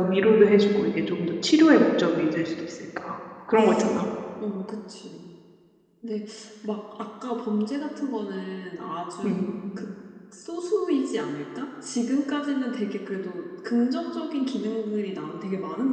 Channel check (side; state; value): both; identical; correlation 1.00